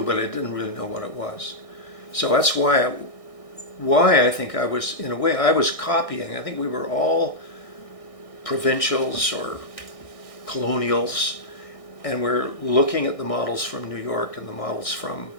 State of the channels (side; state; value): right; late; 1.6 ms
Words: but I didn't really know what it was. So that's why I think I was, in a way, I was copying. I think we were all provincials or colonials, and we're looking at the models from New York and the models from